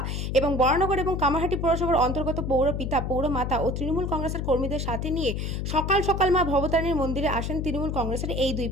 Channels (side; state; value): left; noise; hum, 2 dB below the sound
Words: এবং বরানগর এবং কামারহাটি পৌরসভার অন্তর্গত পৌর পিতা, পৌরমাতা ও তৃণমূল কংগ্রেসের কর্মীদের সাথে নিয়ে সকাল সকাল মা ভবতারিণীর মন্দিরে আসেন তৃণমূল কংগ্রেসের এই দুই